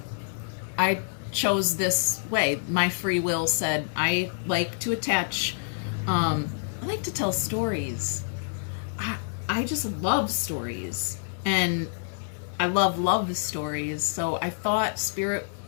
I chose this way. My free will said I like to attach, I like to tell stories. I just love stories. And I love stories. So I thought Spirit,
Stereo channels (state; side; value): silent; right; 58 dB below the other